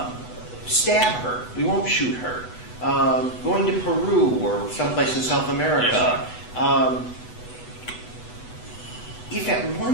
Stab her. We won't shoot her. Going to Peru or someplace in South America. Yes, if at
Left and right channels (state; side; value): late; right; 8.1 ms